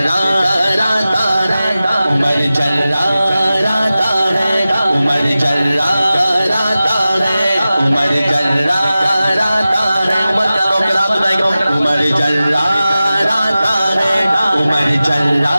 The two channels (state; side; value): inverted; both; correlation -0.95